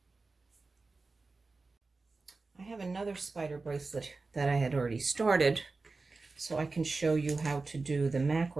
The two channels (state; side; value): quieter; left; 3.8 dB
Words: I have another spider bracelet that I had already started, so I can show you how to do the